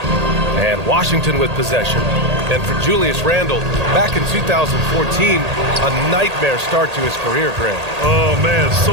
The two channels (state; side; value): late; left; 1.8 ms